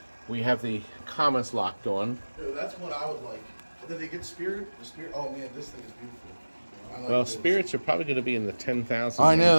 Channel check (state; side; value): inverted; both; correlation -1.00